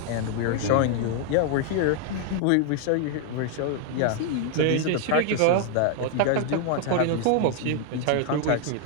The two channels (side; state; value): both; different; correlation 0.00